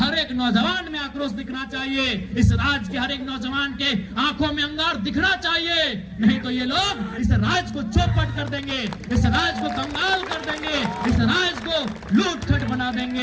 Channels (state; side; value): identical; both; correlation 1.00